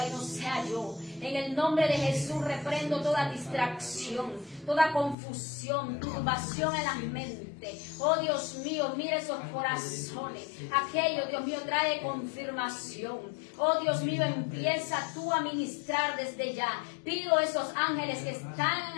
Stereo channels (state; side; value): drops out; right; at 5.2 s